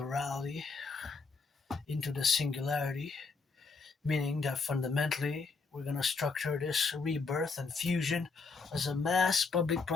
into the singularity, meaning that fundamentally we're going to structure this rebirth and fusion as a mass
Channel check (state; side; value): quieter; right; 4.4 dB